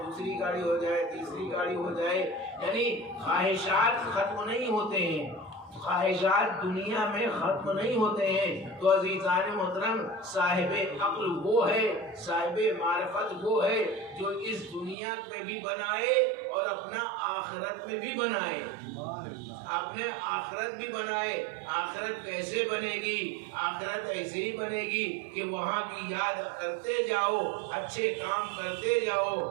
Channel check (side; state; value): left; drops out; at 15.0 s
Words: دوسری گاڑی ہو جائے، تیسری گاڑی ہو جائے. یعنی خواہشات ختم نہیں ہوتے ہیں، خواہشات دنیا میں ختم نہیں ہوتے ہیں. تو عزیزان محترم، صاحب عقل وہ ہے، صاحب معرفت وہ ہے جو اس دنیا میں بھی بنائے اور اپنا آخرت میں بھی بنائے، اپنے آخرت بھی بنائے. آخرت کیسے بنے گی؟ آخرت ایسے ہی بنے گی کہ وہاں کی یاد کرتے جاؤ، اچھے کام کرتے جاؤ،